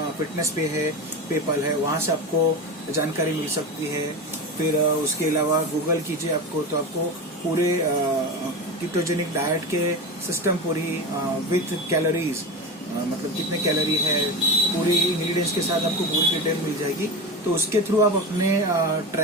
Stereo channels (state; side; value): normal; both; correlation 0.23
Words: फिटनेस पे है, पेपल है, वहाँ से आपको जानकारी मिल सकती है। फिर उसके अलावा गूगल कीजिए आपको, तो आपको पूरे कीटोजेनिक डाइट के सिस्टम पूरी विथ कैलोरीज, मतलब कितने कैलोरी है, पूरी इंग्रेडिएंट्स के साथ आपको पूरी डिटेल मिल जाएगी। तो उसके थ्रू आप अपने